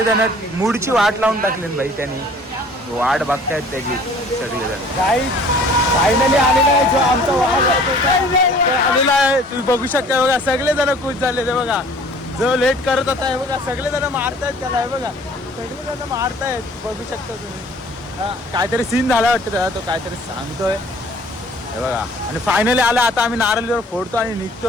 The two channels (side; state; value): both; normal; correlation 0.52